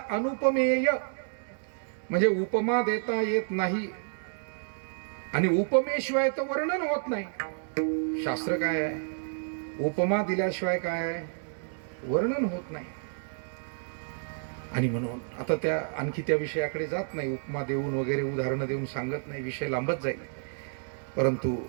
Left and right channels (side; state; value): left; silent; digital silence